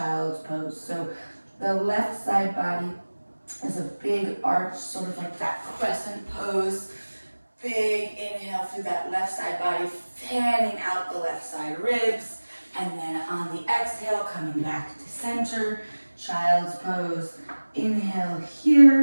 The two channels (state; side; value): inverted; both; correlation -1.00